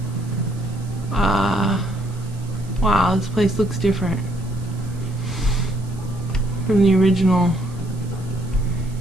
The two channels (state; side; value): noise; right; hiss, 24 dB below the sound